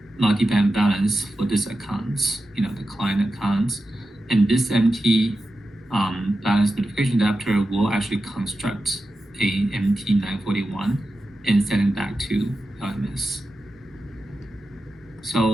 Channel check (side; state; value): both; normal; correlation 0.91